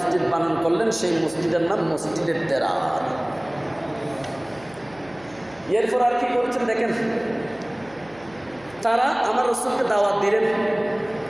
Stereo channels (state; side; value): noise; right; hum, 24 dB below the sound